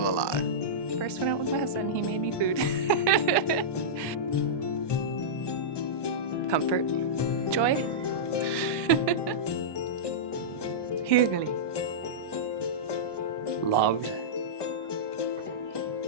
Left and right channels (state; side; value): late; right; 1.2 ms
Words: alive. First went out with my husband, he made me food. Comfort. Joy. Hyggelig. Loved.